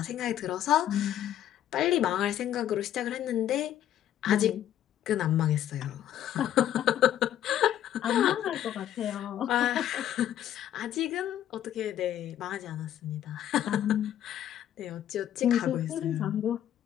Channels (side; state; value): right; quieter; 11.3 dB